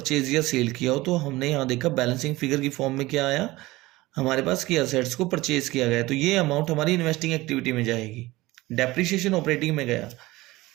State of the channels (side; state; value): left; quieter; 19.3 dB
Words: या सेल किया हो। तो हमने यहाँ देखा बैलेंसिंग फिगर की फॉर्म में क्या आया हमारे पास कि असेट्स को परचेज किया गया, तो ये अमाउंट हमारी इन्वेस्टिंग एक्टिविटी में जाएगी, डेप्रिसिएशन ऑपरेटिंग में गया।